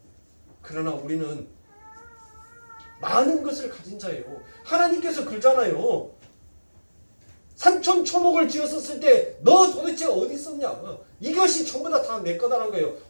그러나 우리는 많은 것을 가진 자예요. 하나님께서 그러잖아요. 산천초목을 지었었을 때 너 도대체 어디 있었냐? 이것이 전부 다 내 거다라는 거예요.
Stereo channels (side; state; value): both; inverted; correlation -1.00